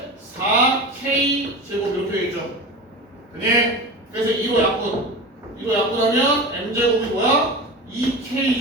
4k 제곱 이렇게 되겠죠. 그니? 그래서 2로 약분. 2로 약분하면 m 제곱이 뭐야? 2k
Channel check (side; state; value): both; normal; correlation 0.29